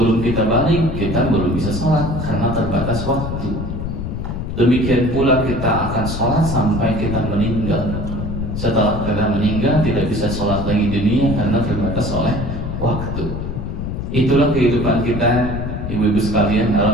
kita balik, kita belum bisa sholat karena terbatas waktu. Demikian pula kita akan sholat sampai kita meninggal. Setelah kita meninggal tidak bisa sholat lagi di dunia karena terbatas oleh waktu. Itulah kehidupan kita, ibu-ibu sekalian,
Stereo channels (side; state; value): left; noise; rumble, 5 dB below the sound